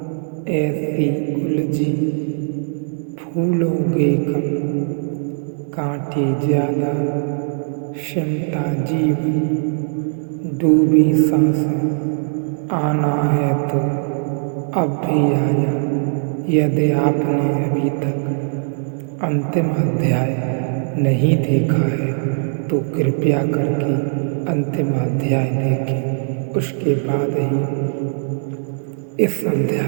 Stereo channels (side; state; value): left; silent; 66 dB below the other